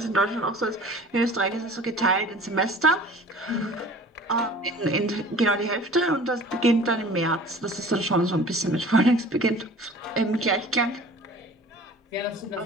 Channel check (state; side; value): normal; both; correlation 0.45